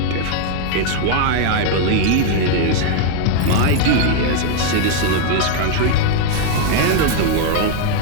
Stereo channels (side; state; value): both; different; correlation 0.01